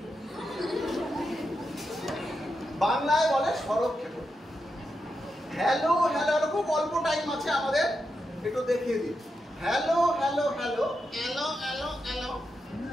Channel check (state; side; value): normal; both; correlation 0.86